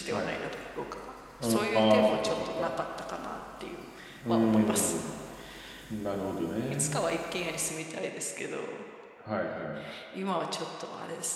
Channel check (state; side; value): identical; both; correlation 1.00